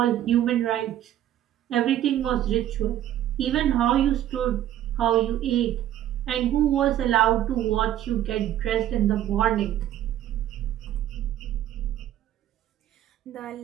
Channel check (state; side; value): quieter; left; 12.1 dB